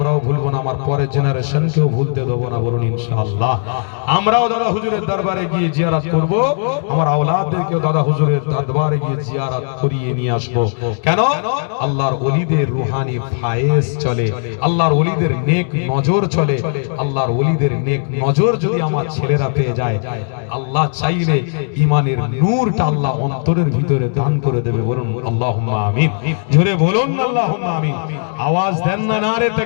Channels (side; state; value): right; silent; digital silence